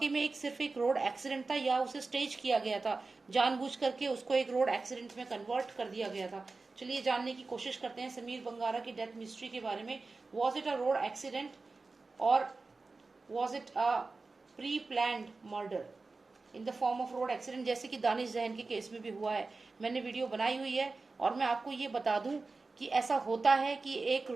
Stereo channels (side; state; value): left; quieter; 3.8 dB